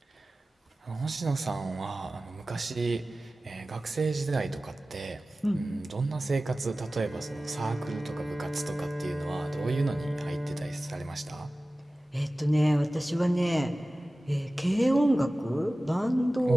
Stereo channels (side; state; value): both; normal; correlation 0.96